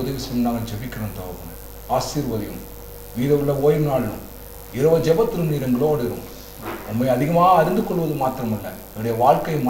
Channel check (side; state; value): both; identical; correlation 1.00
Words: உதவி செய்யும் நாங்கள் ஜெபிக்கிறோம் தகப்பனே. ஆசீர்வதியும். மீத உள்ள ஓய்வு நாளும் இரவு ஜெபத்திலும் நீர் எங்களோடு இருக்கும். உண்மை அதிகமாக அறிந்து கொள்வது மாத்திரமல்ல, என்னுடைய வாழ்க்கையை